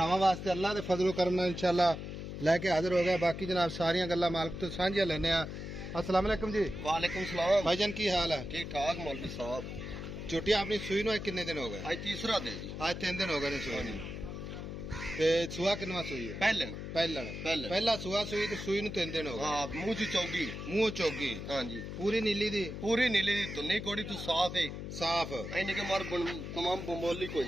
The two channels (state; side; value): noise; left; hum, 7 dB below the sound